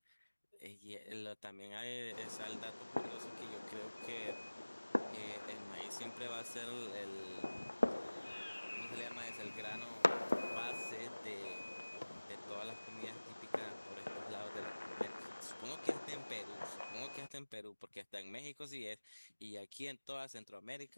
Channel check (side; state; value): both; inverted; correlation -1.00